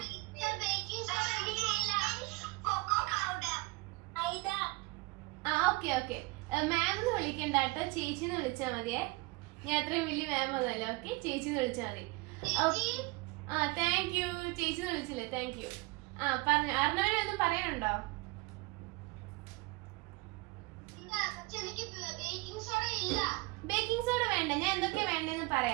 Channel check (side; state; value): left; quieter; 24.6 dB